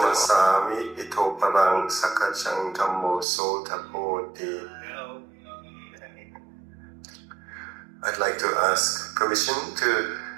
Sami ito parang sakachang dhammo so tapoti. I'd like to ask permission to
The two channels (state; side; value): drops out; left; at 3.2 s